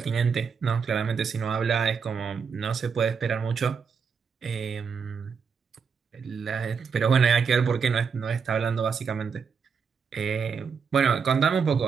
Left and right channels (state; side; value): quieter; left; 6.0 dB